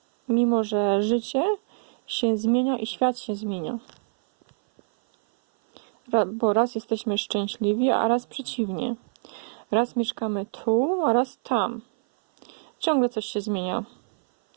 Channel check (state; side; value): silent; left; 57 dB below the other